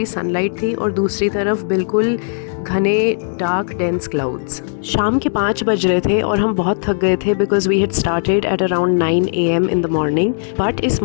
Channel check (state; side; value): silent; right; 68 dB below the other